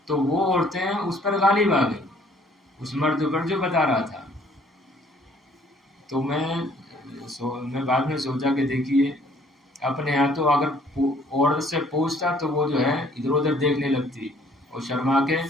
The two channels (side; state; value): both; normal; correlation 0.60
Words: تو وہ عورتیں اس پر غالب آ گئیں، اس مرد پر جو بتا رہا تھا. تو میں بعد میں سوچا کہ دیکھیے اپنے یہاں تو اگر عورت سے پوچھتا تو وہ جو ہے ادھر ادھر دیکھنے لگتی اور شرما کے